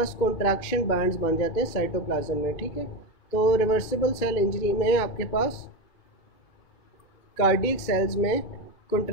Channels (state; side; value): late; right; 2.3 ms